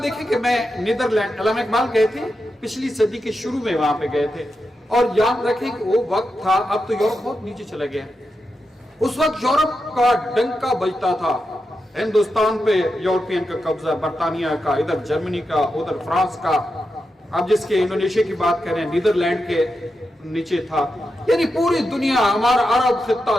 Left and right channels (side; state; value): both; normal; correlation 0.88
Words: دیکھیں کہ میں نیدرلینڈ، علامہ اقبال گئے تھے پچھلی صدی کے شروع میں وہاں پہ گئے تھے، اور یاد رکھیں کہ وہ وقت تھا، اب تو یورپ بہت نیچے چلا گیا، اس وقت یورپ کا ڈنکا بجتا تھا، ہندوستان پہ یورپین کا قبضہ، برطانیہ کا، ادھر جرمنی کا، ادھر فرانس کا، اب جس کے انڈونیشیا کی بات کریں نیدرلینڈ کے نیچے تھا، یعنی پوری دنیا، ہمارا عرب